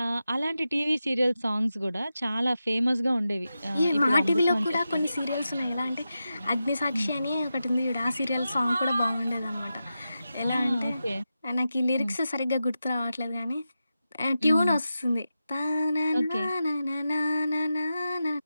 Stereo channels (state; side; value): inverted; both; correlation -0.91